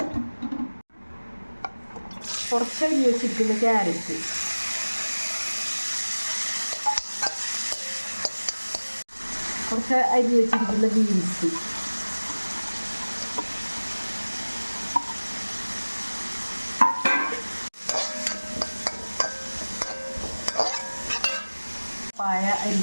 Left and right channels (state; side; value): inverted; both; correlation -1.00